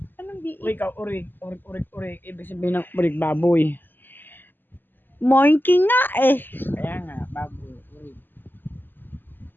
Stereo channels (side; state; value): right; late; 0.093 ms